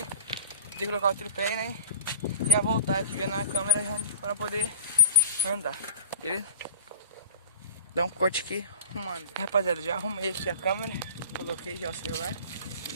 De colocar o tripé, né? E a voltar aqui vendo na câmera para poder andar, beleza? Dá um corte aqui, arrumando. Rapaziada, já arrumei aqui a câmera. Coloquei já o celular.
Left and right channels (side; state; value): both; inverted; correlation -0.38